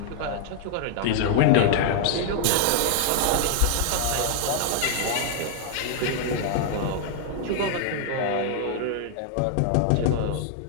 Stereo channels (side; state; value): both; different; correlation -0.01